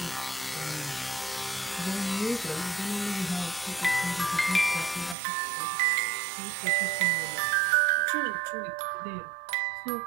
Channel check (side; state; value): left; drops out; at 5.2 s